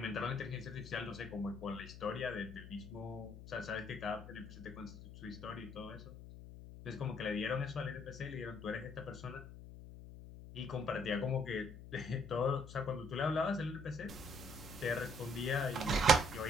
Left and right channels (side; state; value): left; noise; hum, 13 dB below the sound